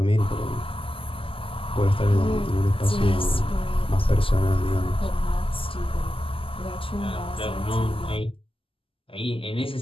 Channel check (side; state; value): right; late; 0.26 ms